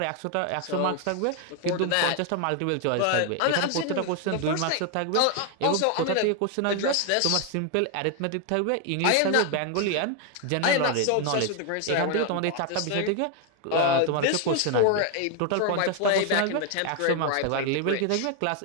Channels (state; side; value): different; both; correlation 0.01